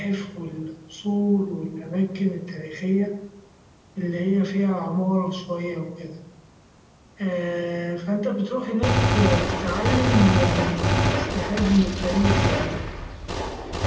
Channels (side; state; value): both; identical; correlation 1.00